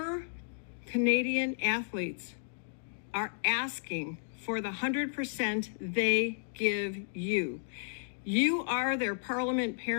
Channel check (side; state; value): right; silent; digital silence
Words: Canadian athletes are asking for the 100% they give you. You are their parliament